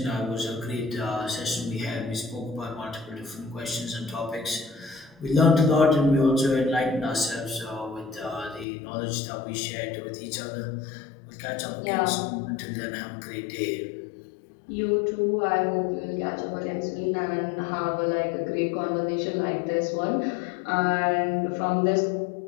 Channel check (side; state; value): right; drops out; at 8.7 s